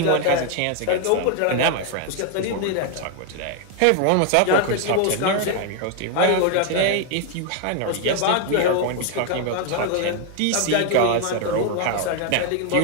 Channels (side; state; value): both; different; correlation 0.00